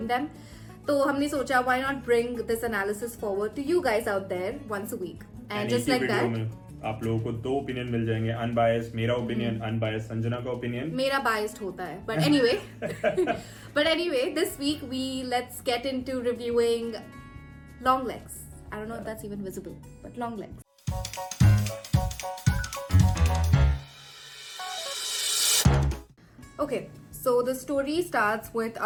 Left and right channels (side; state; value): both; identical; correlation 1.00